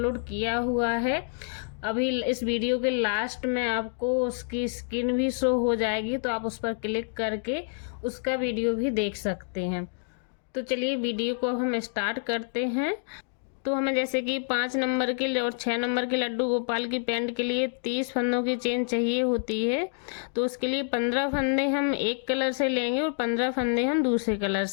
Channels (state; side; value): silent; right; digital silence